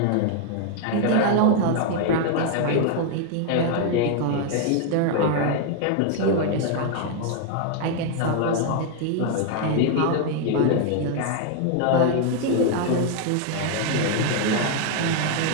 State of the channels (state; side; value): different; both; correlation 0.00